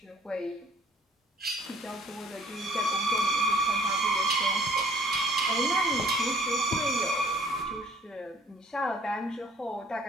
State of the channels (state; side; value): normal; both; correlation 0.57